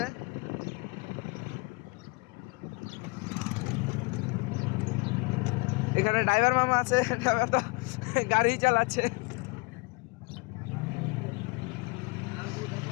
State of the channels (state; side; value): quieter; right; 28.3 dB